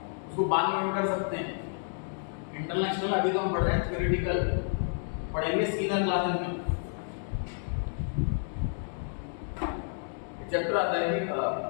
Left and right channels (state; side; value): silent; right; digital silence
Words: उसको बाद में कर सकते हैं। इंटरनल एक्सटर्नल अभी तो हम पढ़ रहे हैं थ्योरेटिकल, पढ़ेंगे सीनियर क्लासेस में। चैप्टर आता है